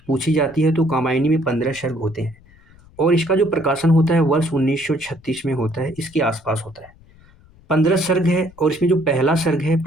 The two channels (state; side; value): noise; left; rumble, 27 dB below the sound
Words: पूछी जाती है। तो कामायनी में 15 सर्ग होते हैं और इसका जो प्रकाशन होता है वर्ष 1936 में होता है, इसके आसपास होता है। 15 सर्ग है और इसमें जो पहला सर्ग है,